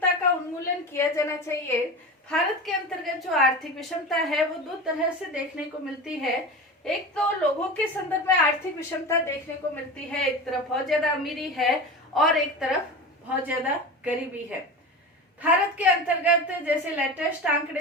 का उन्मूलन किया जाना चाहिए। भारत के अंतर्गत जो आर्थिक विषमता है वो दो तरह से देखने को मिलती है। एक तो लोगों के संदर्भ में आर्थिक विषमता देखने को मिलती है, एक तरफ बहुत ज्यादा अमीरी है और एक तरफ बहुत ज्यादा गरीबी है। भारत के अंतर्गत जैसे लेटेस्ट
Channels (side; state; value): both; normal; correlation 0.28